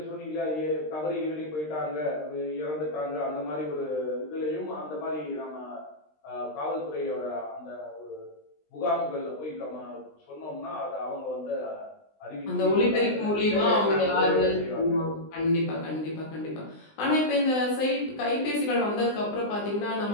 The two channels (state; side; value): late; right; 20 ms